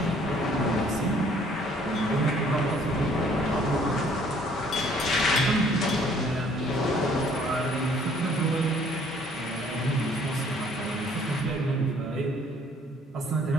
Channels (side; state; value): both; normal; correlation 0.60